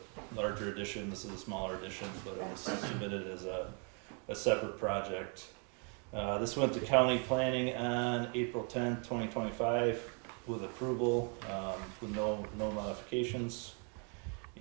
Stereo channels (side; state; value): left; quieter; 37.9 dB